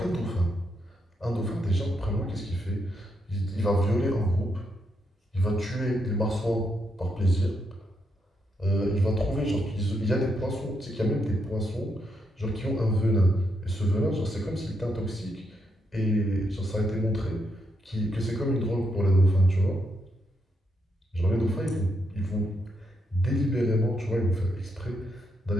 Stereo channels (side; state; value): both; normal; correlation 0.79